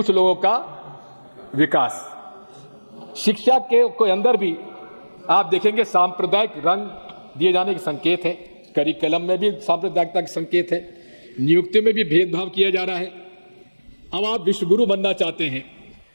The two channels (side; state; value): both; inverted; correlation -1.00